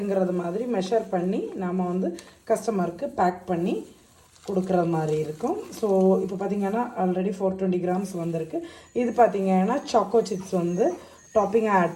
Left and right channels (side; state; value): both; identical; correlation 1.00